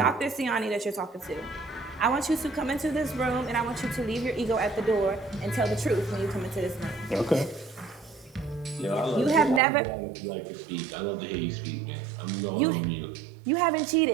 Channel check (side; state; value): left; drops out; at 9.6 s